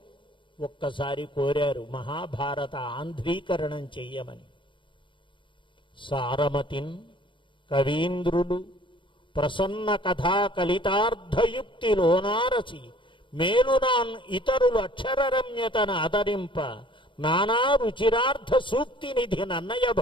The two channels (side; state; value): right; late; 0.24 ms